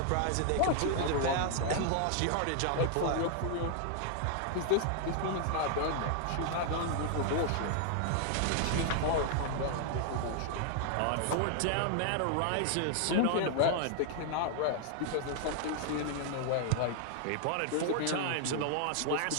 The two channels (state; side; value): different; both; correlation 0.00